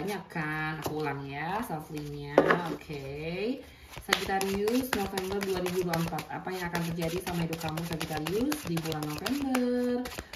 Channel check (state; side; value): identical; both; correlation 1.00